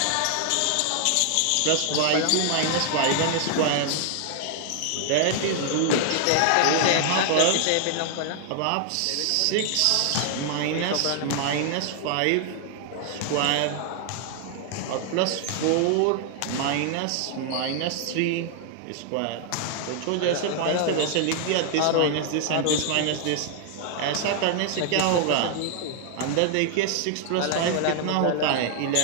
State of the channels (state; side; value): different; both; correlation 0.00